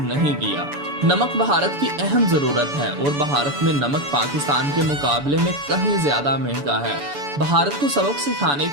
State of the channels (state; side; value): late; left; 7.0 ms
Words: नहीं किया। नमक भारत की अहम जरूरत है और भारत में नमक पाकिस्तान के मुकाबले में कहीं ज्यादा महंगा है। भारत को सबक सिखाने